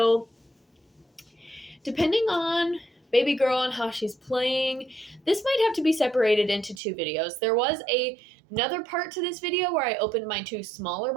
depending on baby girl and how she's playing, this might have to be separated into two videos. There was another part to this video where I opened my two smaller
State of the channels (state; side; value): drops out; left; at 6.8 s